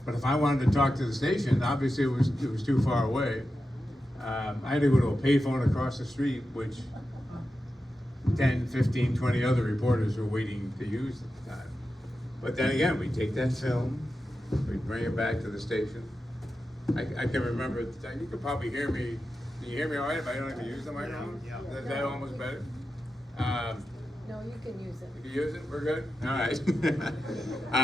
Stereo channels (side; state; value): both; normal; correlation 0.91